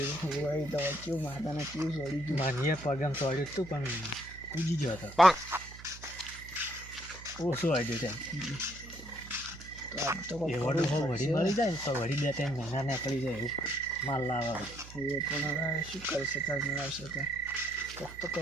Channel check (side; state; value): right; noise; hum, 16 dB below the sound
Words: હોય તો કેવું માતાને કેવું છોડી ગયું. માનીએ પગમ ચોડ્યું હતું પણ કૂદી ગયો હતો. ઓછું આવ્યું તેમ. તો આજ તો કોઈક એ કરવું જ વડી પડશે. મળી જાય ને તો વડી 2-3 મહિના નીકળી જાય એવું માલ લાવે. એ પણ હવે શું કરી શકાય મેળવશે તો કોઈક તો